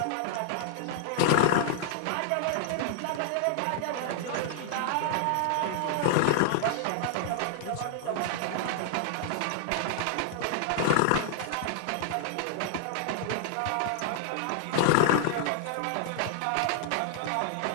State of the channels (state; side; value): different; both; correlation 0.00